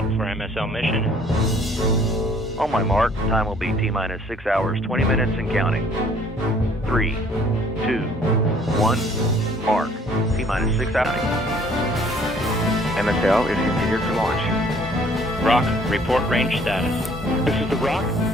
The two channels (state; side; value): normal; both; correlation 0.59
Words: for MSL mission. On my mark, time will be T-minus 6 hours, 20 minutes and counting. 3, 2, 1, mark. T-minus 6 hours. MSL is configured for launch. Rock, report range status. This is the Rock.